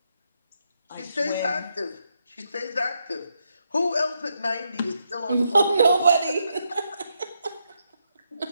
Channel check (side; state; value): both; inverted; correlation -0.80